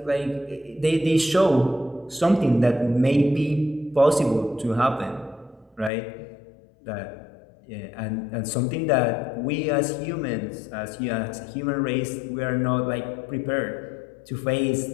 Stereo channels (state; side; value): drops out; right; at 5.9 s